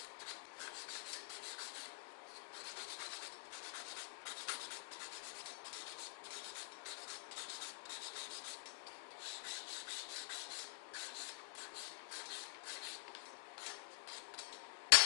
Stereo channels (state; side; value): silent; right; digital silence